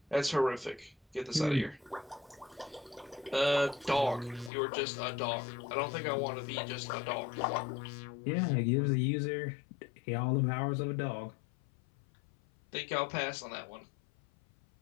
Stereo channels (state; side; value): drops out; right; at 4.5 s